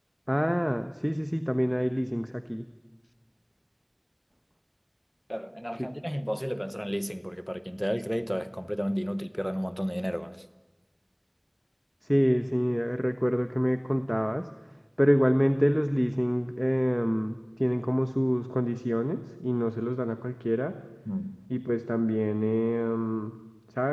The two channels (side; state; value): both; identical; correlation 1.00